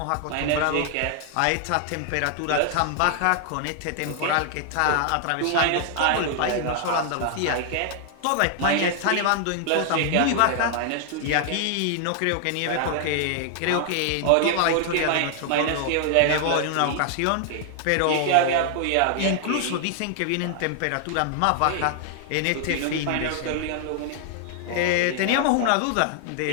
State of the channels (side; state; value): both; different; correlation 0.00